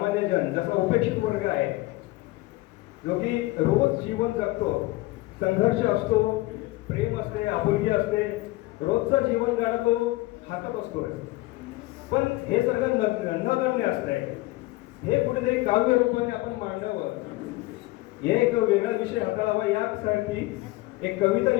जन, जसा उपेक्षित वर्ग आहे जो की रोज जीवन जगतो, संघर्ष असतो, प्रेम असते, आपुलकी असते, रोजचं जीवन गाणं हातात असतो, पण हे सगळं नगण्य असतंय. हे कुठेतरी काव्य रूपाने आपण मांडावं, हे एक वेगळा विषय हाताळावा यासाठी एक कविता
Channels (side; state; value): right; quieter; 19.9 dB